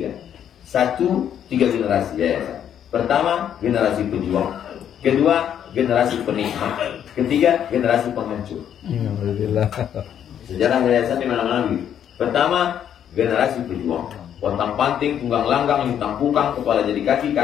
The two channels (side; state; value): right; quieter; 9.5 dB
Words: 3 generasi yayasan. Pertama, generasi pejuang. Kedua, generasi penikmat. Ketiga, generasi penghancur. Sejarah yayasan di mana-mana begitu. Pertama, generasi pejuang. Pontang panting, tunggang langgang, lintang pukang, kepala jadi kaki,